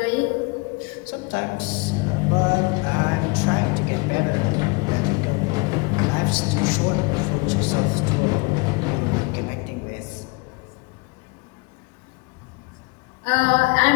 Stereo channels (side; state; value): right; quieter; 28.0 dB